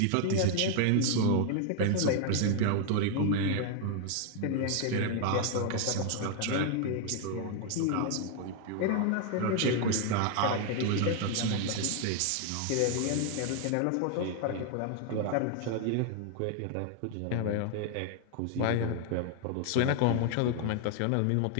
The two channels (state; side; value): different; both; correlation 0.00